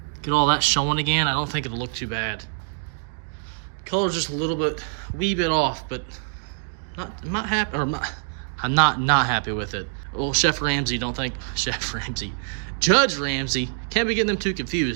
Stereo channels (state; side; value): silent; left; digital silence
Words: Get all that showing again. I don't think it'll look too bad. Color's just a little bit, wee bit off, but I'm not happy, or I'm not happy with it. Well, Chef Ramsay, Judge Ramsay, can't be getting them too